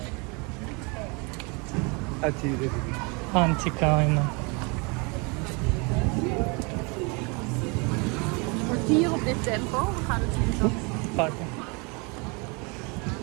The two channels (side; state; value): left; quieter; 30.8 dB